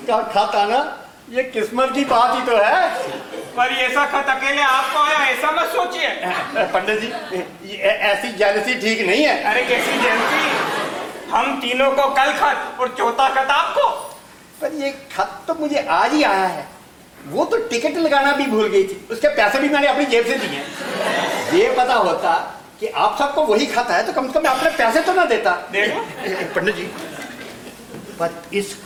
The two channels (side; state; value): both; identical; correlation 1.00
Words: खत आना ये किस्मत की बात ही तो है। पर ऐसा खत अकेले आपको आया ऐसा मत सोचिए। पंडित जी, ऐसी जेलसी ठीक नहीं है। अरे कैसी जेलसी? हम तीनों को कल खत और चौथा खत आपको। पर ये खत तो मुझे आज ही आया है। वो तो टिकट लगाना भी भूल गई थी, उसके पैसे भी मैंने अपनी जेब से दिए। ये पता होता कि आप सबको वही खत है तो कम से कम अपने पैसे तो ना देता। देखो पंडित जी, पर इस